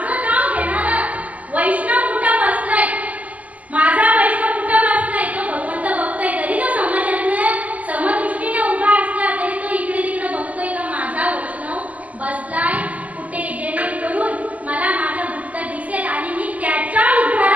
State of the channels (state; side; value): late; left; 0.069 ms